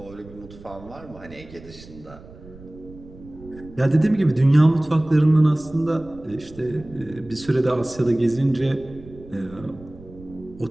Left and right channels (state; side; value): noise; right; rumble, 19 dB below the sound